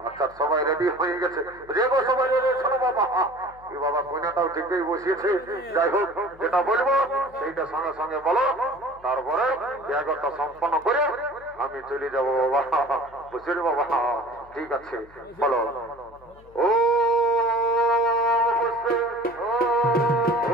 আচ্ছা সবাই রেডি হয়ে গেছে যে গো সবাই রেডি শোনো বাবা কি বাবা কন্যাটাও ঠিকই বসিয়েছে যাই হোক যেটা বলবো সেইটা সঙ্গে সঙ্গে বলো তারপরে বিয়াগরটা সম্পন্ন করে আমি চলে যাবো বাবা বুঝলি বাবা ঠিক আছে বলো ও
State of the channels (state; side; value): noise; left; hum, 25 dB below the sound